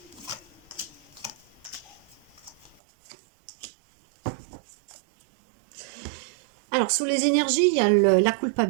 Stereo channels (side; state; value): left; drops out; at 2.8 s